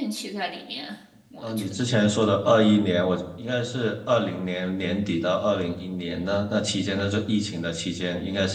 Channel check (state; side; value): identical; both; correlation 1.00